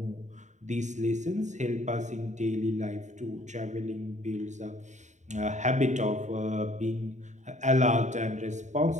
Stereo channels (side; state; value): left; late; 0.34 ms